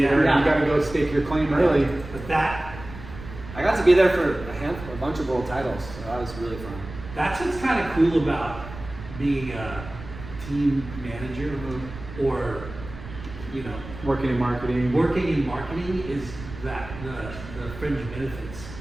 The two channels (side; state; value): right; noise; rumble, 13 dB below the sound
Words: Yeah. you gotta go stake your claim early. But that, I got to be there for a bunch of world titles, so that was really fun. that's what's kind of cool about being a team manager or, you know, Working in marketing. working in marketing is that the fringe benefits,